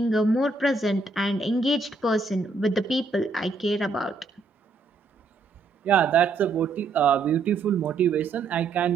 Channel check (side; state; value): left; quieter; 4.0 dB